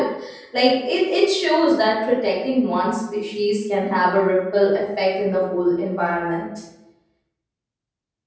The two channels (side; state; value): both; identical; correlation 1.00